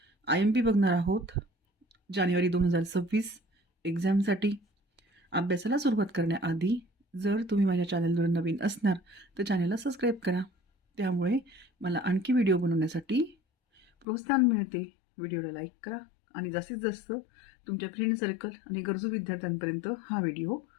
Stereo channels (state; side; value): drops out; right; at 14.1 s